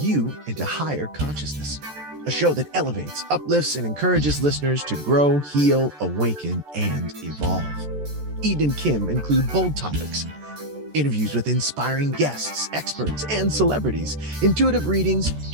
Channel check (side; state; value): left; late; 14 ms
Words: into higher consciousness. A show that elevates, uplifts, and encourages listeners to grow, heal, awaken, and evolve. Eden and Kim include bold topics, interviews with inspiring guests, experts, and celebrities, intuitive readings,